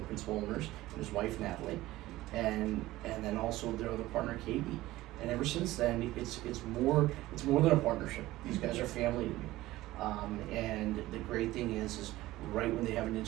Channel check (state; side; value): quieter; left; 17.0 dB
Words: the principal owners, and his wife Natalie, and then also their other partner Katie. And ever since then, it's more than a partnership. These guys are family to me. And the great thing is right when they have an